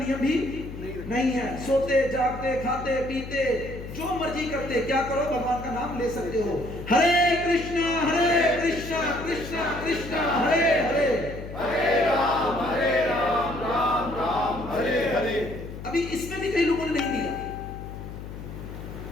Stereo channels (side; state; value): left; noise; hum, 11 dB below the sound